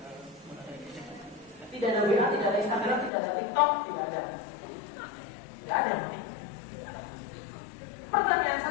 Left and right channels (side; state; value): right; drops out; at 3.1 s